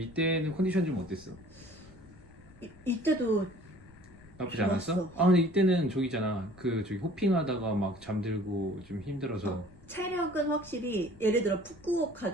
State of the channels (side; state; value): left; noise; rumble, 25 dB below the sound